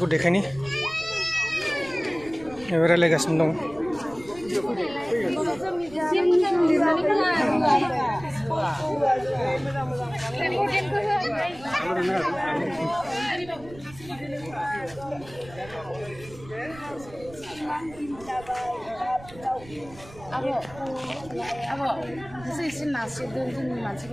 देखायनि रायलायगासिनो दं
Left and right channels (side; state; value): right; noise; rumble, 19 dB below the sound